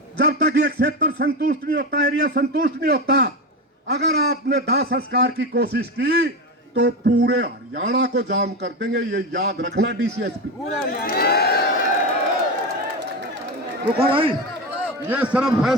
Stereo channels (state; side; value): normal; both; correlation 0.18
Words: जब तक ये क्षेत्र संतुष्ट नहीं होता, एरिया संतुष्ट नहीं होता, अगर आपने दाह संस्कार की कोशिश की तो पूरे हरियाणा को जाम कर देंगे। ये याद रखना डीसीएसपी। रुको भाई, ये सिर्फ